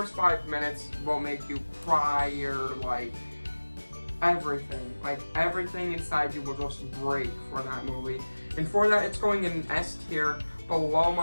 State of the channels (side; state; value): both; inverted; correlation -1.00